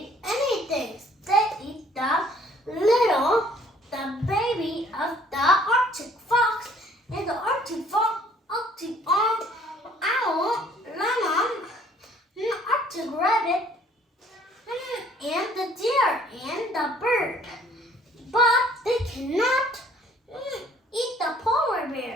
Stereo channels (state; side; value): normal; both; correlation 0.58